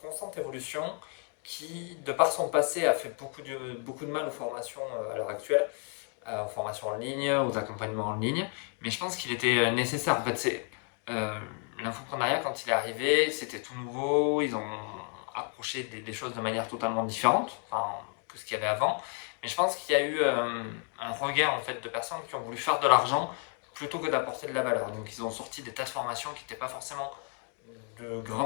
constante évolution, qui, de par son passé, a fait beaucoup de mal aux formations à l'heure actuelle, aux formations en ligne, aux accompagnements en ligne. Mais je pense qu'il était nécessaire. En fait, euh, l'infoprenariat, quand il est arrivé, c'était tout nouveau. Ils ont approché des choses de manière totalement différente, enfin, que ce qu'il y avait avant. Mais je pense qu'il y a eu un regain en fait, de personnes qui ont voulu faire de l'argent plutôt que d'apporter de la valeur. Donc ils ont sorti des tas de formations qui n'étaient pas forcément de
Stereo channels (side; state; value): right; quieter; 39.3 dB